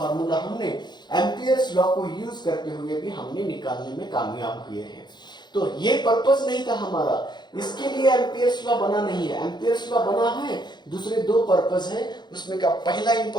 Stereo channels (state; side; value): late; right; 0.21 ms